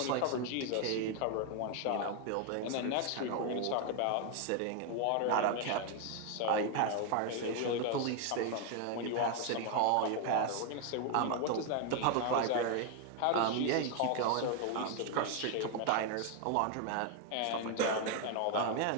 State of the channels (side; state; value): both; different; correlation 0.00